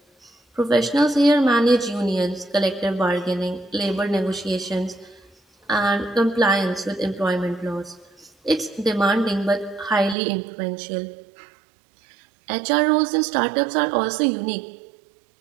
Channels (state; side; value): drops out; left; at 10.2 s